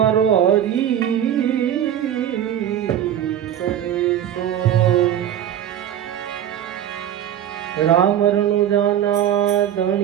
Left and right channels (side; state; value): left; quieter; 10.5 dB